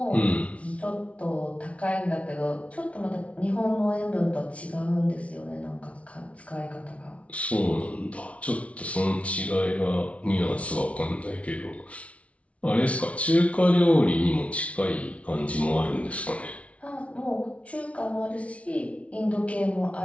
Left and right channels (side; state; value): right; late; 0.064 ms